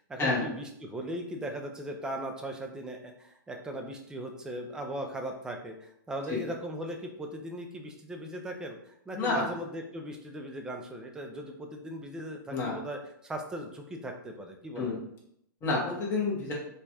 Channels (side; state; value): both; normal; correlation 0.18